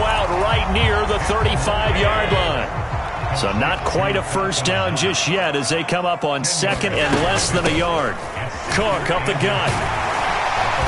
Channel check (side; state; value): both; identical; correlation 1.00